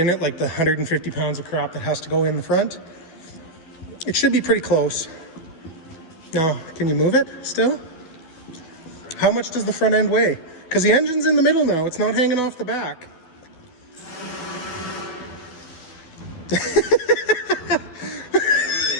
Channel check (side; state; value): right; late; 12 ms